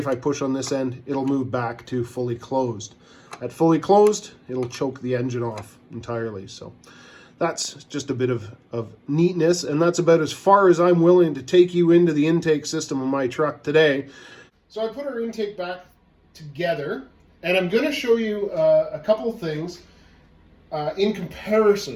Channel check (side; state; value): both; identical; correlation 1.00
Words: I push on this end, it'll move back to fully closed. At fully closed, it'll choke the engine off entirely. So that's just a bit of neatness, and that's about as far as I'm willing to take you into the intake system of my truck today. So I put our intake back together, and I'm going to show you a couple of things in